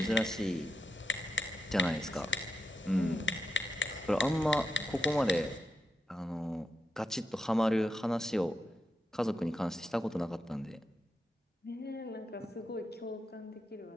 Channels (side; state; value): both; normal; correlation 0.86